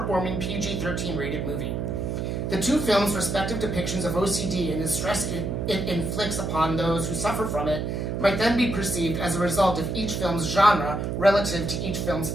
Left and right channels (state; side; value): noise; right; hum, 2 dB below the sound